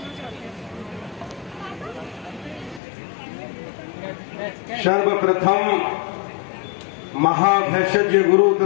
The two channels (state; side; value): drops out; right; at 2.8 s